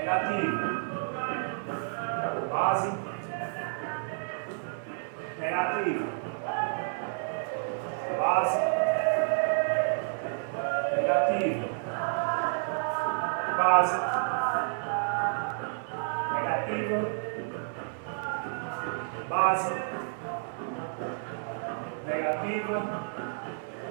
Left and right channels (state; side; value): silent; left; 58 dB below the other